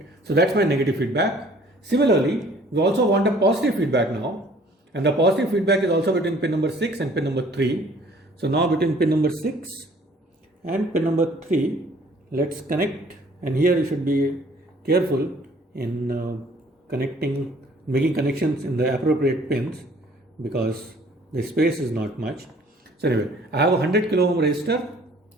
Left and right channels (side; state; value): both; normal; correlation 0.56